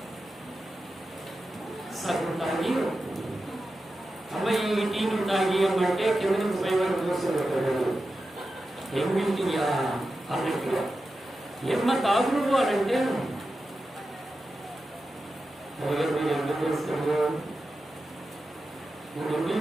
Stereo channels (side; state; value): both; normal; correlation 0.91